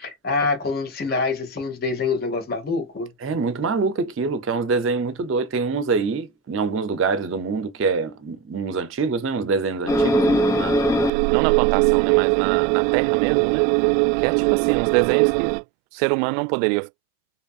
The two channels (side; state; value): left; drops out; at 11.1 s